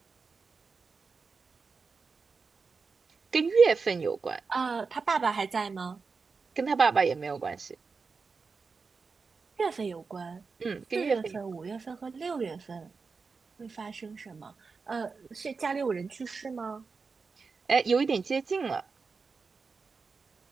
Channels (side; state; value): left; quieter; 4.8 dB